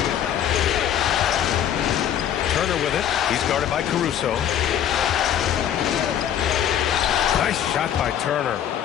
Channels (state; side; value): quieter; right; 9.9 dB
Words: Turner with it. He's guarded by Caruso. Nice shot by Turner.